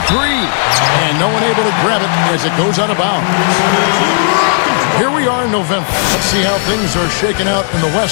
three, and no one able to grab it as it goes out of bounds. Here we are in November. Let's see how things are shaking out in the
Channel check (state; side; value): silent; right; digital silence